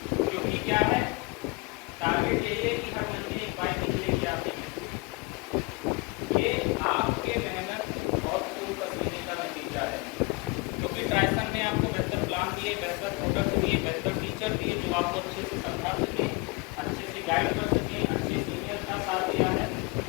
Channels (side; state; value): right; quieter; 25.9 dB